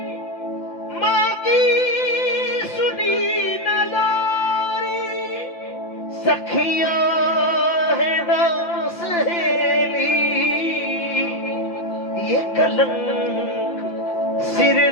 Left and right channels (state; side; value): late; right; 5.8 ms